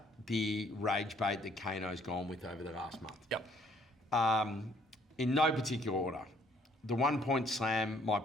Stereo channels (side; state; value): both; normal; correlation 0.63